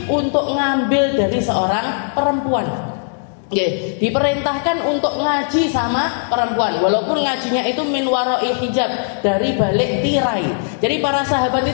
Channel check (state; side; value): silent; right; digital silence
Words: untuk ngambil dari seorang perempuan. Diperintahkan untuk ngaji sama perempuan, walaupun ngajinya itu min warai hijab, dari balik tirai. Jadi para sahabat